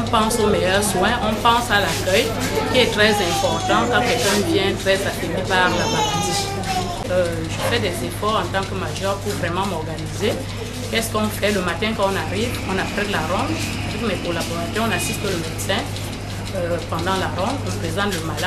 pense aux meilleurs soins, on pense à l'accueil, qui est très important quand quelqu'un vient très affaibli par la maladie. Je fais des efforts en tant que major pour vraiment m'organiser. Qu'est-ce qu'on fait le matin quand on arrive? On apprête la ronde. Avec mes collaborateurs, on assiste le médecin. Pendant la ronde, on présente le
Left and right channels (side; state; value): both; identical; correlation 1.00